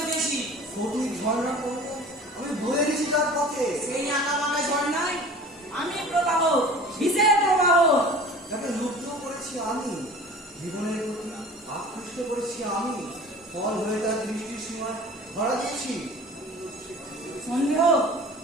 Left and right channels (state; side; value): normal; both; correlation 0.42